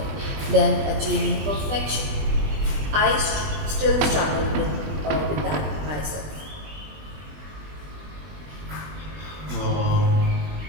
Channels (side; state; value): left; late; 20 ms